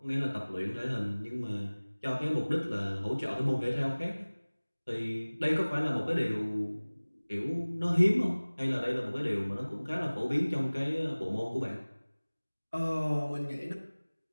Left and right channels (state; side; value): inverted; both; correlation -1.00